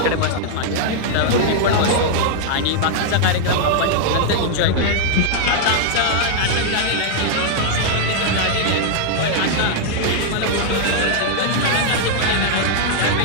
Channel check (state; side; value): different; both; correlation -0.01